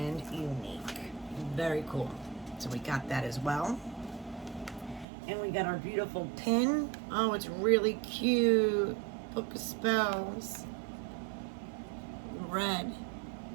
unique. Very cool. So we got that as well. And we got our beautiful pin. Oh, it's really cute. Book of Spells. Red.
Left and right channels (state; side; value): drops out; left; at 5.1 s